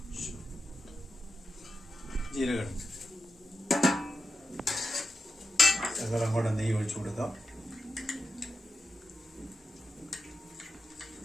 ജീരകം ശകലം കൂടെ നെയ്യ് ഒഴിച്ചു കൊടുക്കാം.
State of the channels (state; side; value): normal; both; correlation 0.90